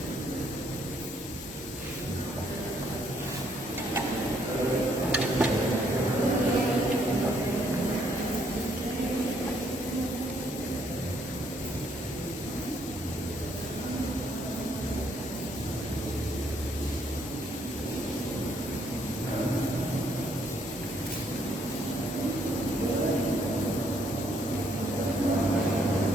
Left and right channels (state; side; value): normal; both; correlation 0.69